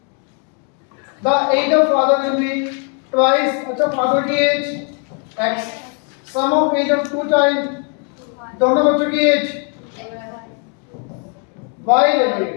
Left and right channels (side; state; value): right; quieter; 38.0 dB